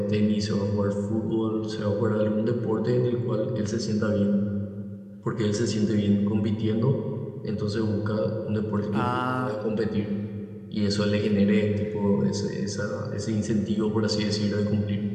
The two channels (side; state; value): both; identical; correlation 1.00